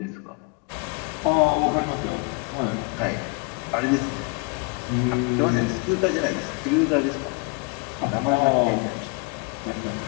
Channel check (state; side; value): quieter; right; 31.9 dB